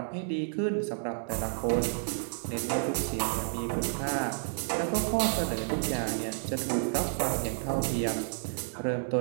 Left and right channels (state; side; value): silent; left; digital silence